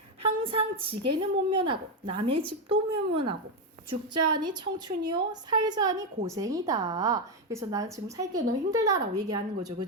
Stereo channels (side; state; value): both; normal; correlation 0.07